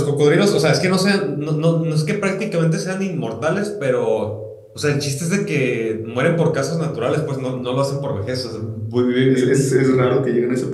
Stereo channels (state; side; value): identical; both; correlation 1.00